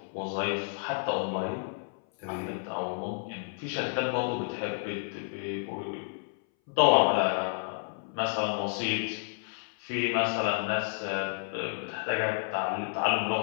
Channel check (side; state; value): right; silent; 57 dB below the other